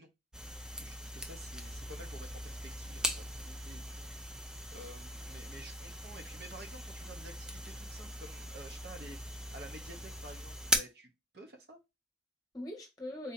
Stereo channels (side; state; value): both; normal; correlation 0.33